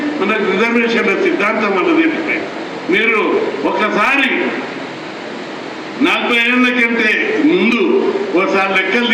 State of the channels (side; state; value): both; identical; correlation 1.00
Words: మనకు రిజర్వేషన్ల సిద్ధాంతం అన్నది. మీరు ఒకసారి 40 ఏళ్ల కంటే ముందు ఒకసారి లెక్కలు